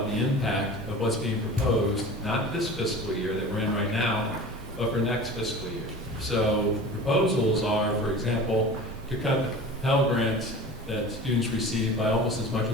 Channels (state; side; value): normal; both; correlation 0.37